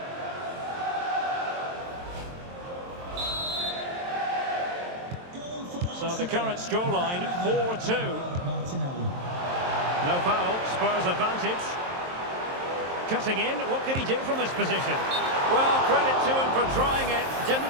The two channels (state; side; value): late; left; 23 ms